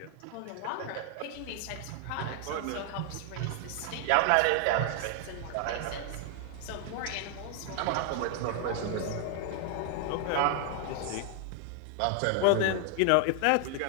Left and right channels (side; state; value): both; different; correlation 0.00